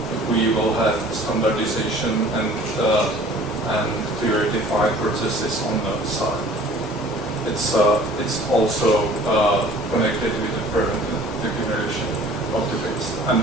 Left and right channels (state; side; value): normal; both; correlation 0.49